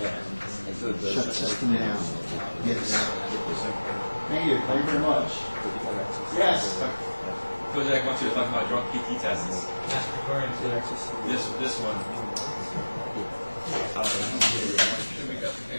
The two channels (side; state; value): both; inverted; correlation -1.00